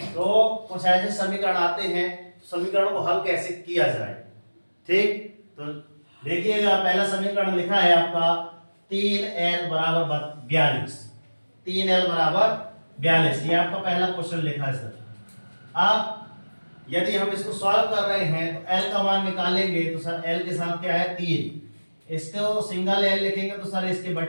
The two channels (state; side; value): inverted; both; correlation -1.00